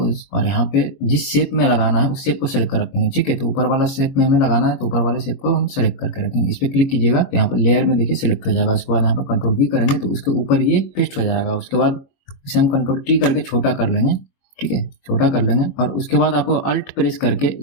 और यहाँ पे जिस शेप में लगाना है उस शेप को सिलेक्ट कर रखेंगे। ठीक है, तो ऊपर वाला शेप में हमें लगाना है तो ऊपर वाले शेप को हम सिलेक्ट करके रखेंगे। इस पे क्लिक कीजिएगा तो यहाँ पर लेयर में देखिए सिलेक्ट हो जाएगा। उसके बाद यहाँ पर Ctrl+V करेंगे तो उसके ऊपर ये पेस्ट हो जाएगा। उसके बाद इसे हम Ctrl+T करके छोटा कर लेंगे। ठीक है, छोटा कर लेंगे और उसके बाद आपको अल्ट प्रेस करके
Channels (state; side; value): late; right; 21 ms